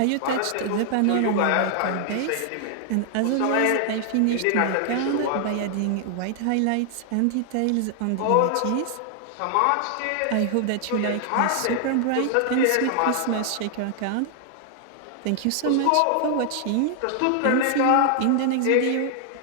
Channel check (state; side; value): different; both; correlation 0.00